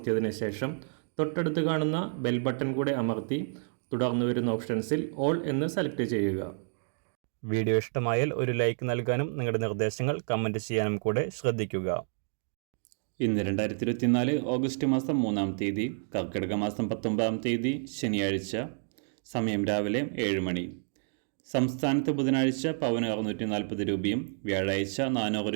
ശേഷം തൊട്ടടുത്ത് കാണുന്ന ബെൽ ബട്ടൺ കൂടെ അമർത്തി തുടർന്ന് വരുന്ന ഓപ്ഷൻസിൽ ഓൾ എന്ന് സെലക്ട് ചെയ്യുക. വീഡിയോ ഇഷ്ടമായാൽ ഒരു ലൈക്ക് നൽകാനും നിങ്ങളുടെ നിർദ്ദേശങ്ങൾ കമൻറ്റ് ചെയ്യാനും കൂടെ ശ്രദ്ധിക്കുക. ഇന്ന് 2024 ഓഗസ്റ്റ് മാസം 3-ാം തീയതി, കർക്കിടക മാസം 19-ാം തീയതി ശനിയാഴ്ച. സമയം രാവിലെ 7 മണി. സംസ്ഥാനത്ത് ബുധനാഴ്ച പവന് 640 രൂപയും വ്യാഴാഴ്ച 400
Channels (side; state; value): left; silent; digital silence